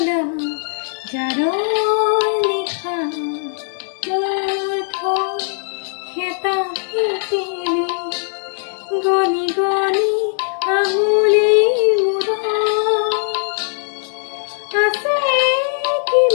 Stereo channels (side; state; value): right; silent; digital silence